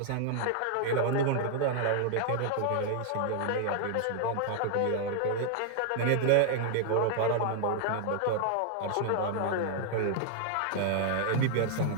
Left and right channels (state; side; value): different; both; correlation 0.00